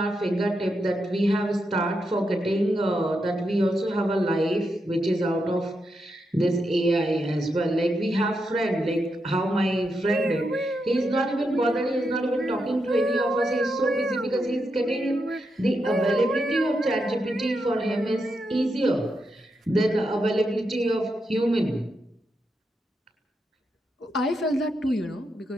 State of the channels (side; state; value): both; normal; correlation 0.84